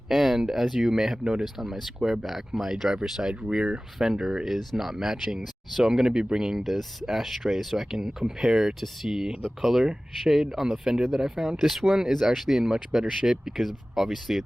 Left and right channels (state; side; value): normal; both; correlation 0.97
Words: and as you may have noticed on my Squareback, my driver's side rear fender is not matching. So I'm gonna be bringing this ashtray so I can compare to see the color shade on the fender that I found. This one is actually in much better shape because obviously